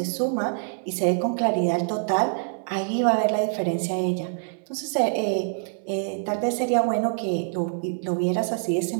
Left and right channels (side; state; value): left; silent; digital silence